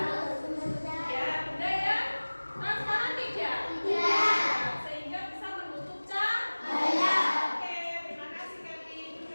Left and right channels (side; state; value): both; inverted; correlation -1.00